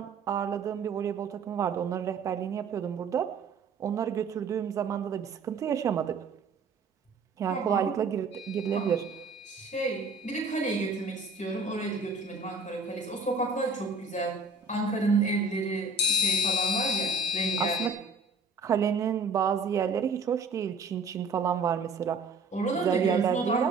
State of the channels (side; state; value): left; quieter; 3.9 dB